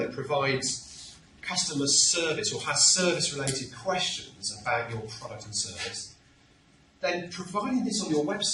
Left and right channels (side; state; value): both; identical; correlation 1.00